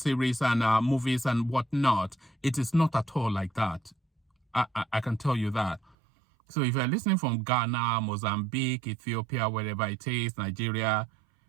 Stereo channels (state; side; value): drops out; left; at 6.0 s